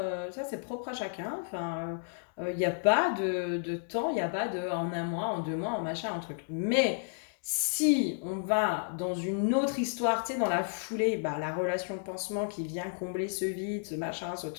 ça c'est propre à chacun. Enfin, il n'y a pas de temps, il n'y a pas de en un mois, en 2 mois, en machin, en truc. Mais si on va dans une autre histoire, tu sais, dans la foulée, bah, la relation pansement qui vient combler ce vide, ce machin, ce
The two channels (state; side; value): silent; right; digital silence